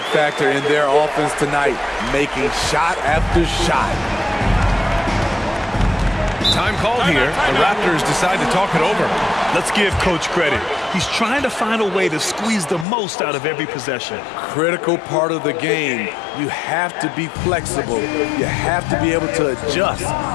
factor in their offense tonight, making shot after shot. Time called here. The Raptors decide to talk it over. Let's give Coach credit. He's trying to find a way to squeeze the most out of every possession. Critical part of the game. You have to be flexible. You have to be able to adjust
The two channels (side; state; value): right; drops out; at 12.9 s